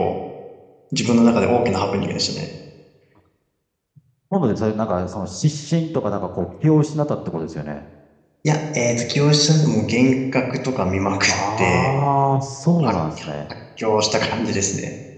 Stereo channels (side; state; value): both; identical; correlation 1.00